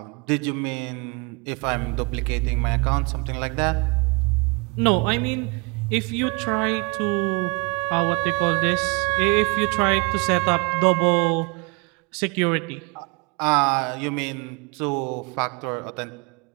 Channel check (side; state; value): left; quieter; 30.4 dB